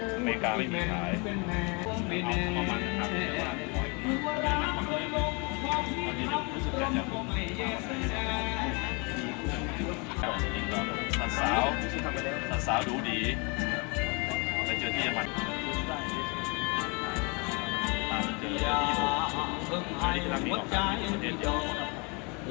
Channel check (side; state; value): right; quieter; 31.5 dB